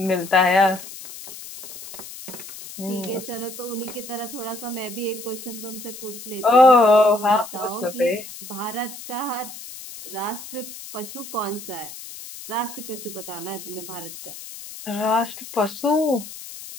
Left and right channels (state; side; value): noise; left; hiss, 13 dB below the sound